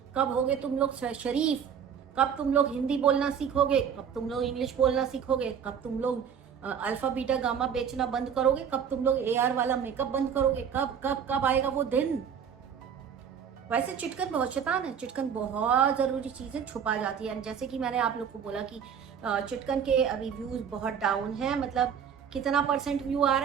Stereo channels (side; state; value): left; quieter; 7.7 dB